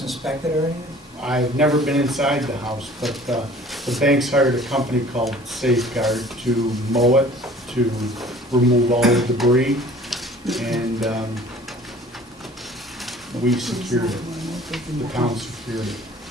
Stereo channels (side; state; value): both; normal; correlation 0.49